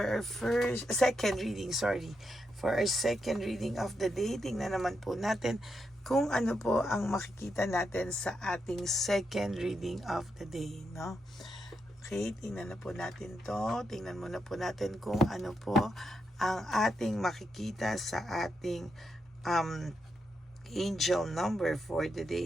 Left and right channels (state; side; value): normal; both; correlation 0.83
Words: our second reading, For our second reading of the day, tingnan naman po natin kung ano po ang makikita natin sa ating second reading of the day, no? Okay, tingnan na po natin to. Tingnan muna po natin kung ano po ang ating makikita sa ating angel number for the